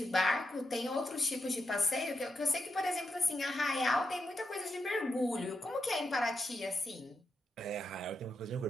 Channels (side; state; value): both; normal; correlation 0.85